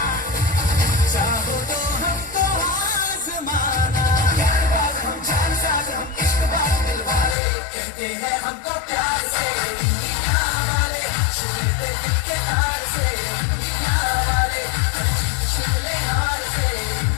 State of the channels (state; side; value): drops out; right; at 7.4 s